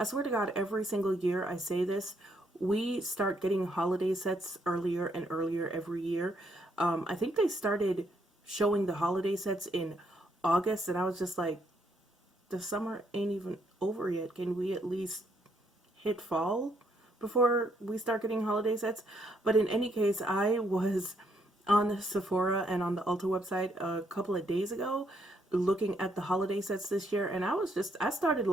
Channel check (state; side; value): normal; both; correlation 0.73